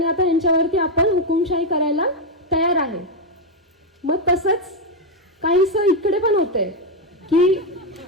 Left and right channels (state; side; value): normal; both; correlation 0.04